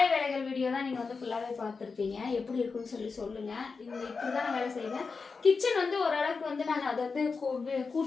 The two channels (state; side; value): quieter; right; 4.7 dB